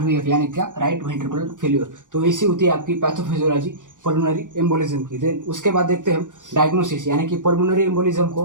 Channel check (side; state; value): left; late; 0.87 ms